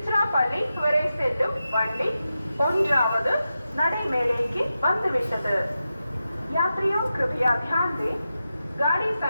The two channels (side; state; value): both; inverted; correlation -0.91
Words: வரை செல்லும் வண்டி 1வது நடைமேடைக்கு வந்துவிட்டது. यात्रियों कृपया ध्यान दें, गाड़ी